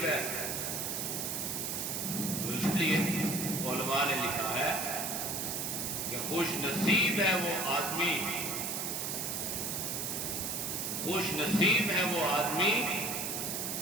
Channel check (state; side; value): noise; right; hiss, 2 dB below the sound